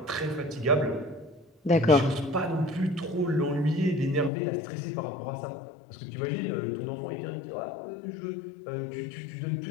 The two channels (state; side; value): drops out; right; at 4.3 s